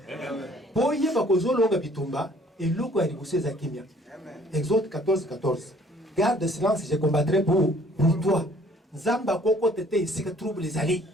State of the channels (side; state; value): both; normal; correlation 0.58